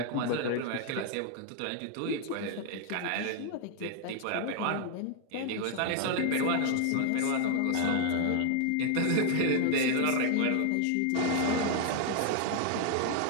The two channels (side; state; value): both; different; correlation 0.00